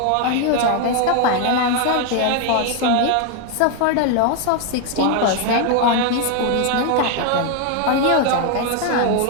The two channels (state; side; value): different; both; correlation 0.01